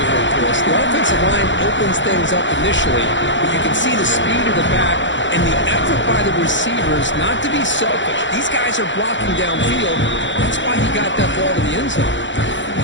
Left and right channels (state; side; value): late; right; 0.54 ms